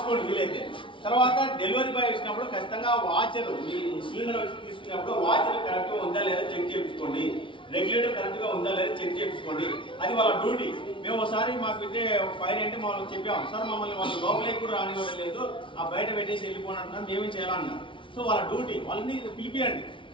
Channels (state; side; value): late; right; 0.25 ms